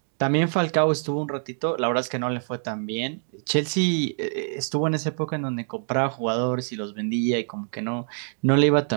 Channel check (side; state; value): left; silent; 62 dB below the other